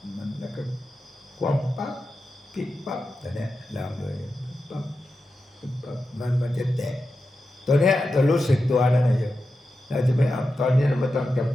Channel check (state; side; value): normal; both; correlation 0.90